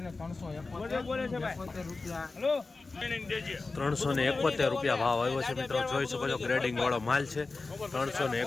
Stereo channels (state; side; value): quieter; right; 3.7 dB